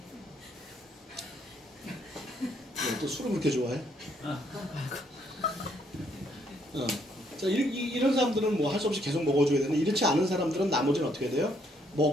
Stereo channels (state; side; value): normal; both; correlation 0.70